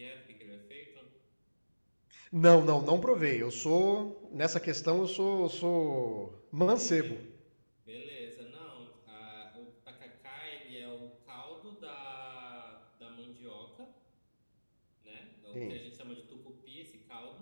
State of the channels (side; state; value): both; inverted; correlation -1.00